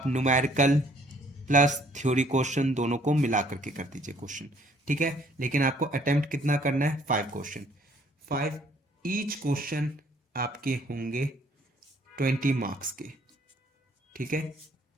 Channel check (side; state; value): both; normal; correlation 0.62